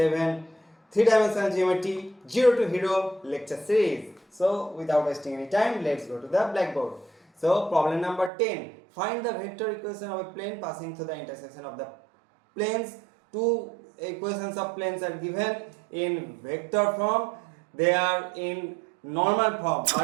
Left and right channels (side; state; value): left; drops out; at 8.3 s